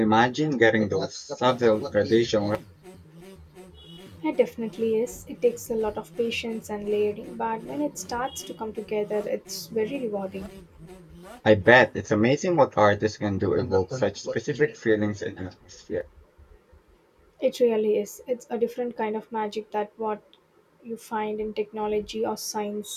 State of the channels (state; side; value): identical; both; correlation 1.00